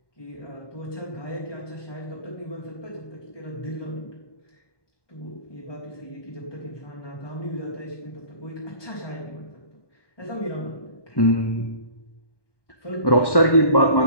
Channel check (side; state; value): right; late; 1.2 ms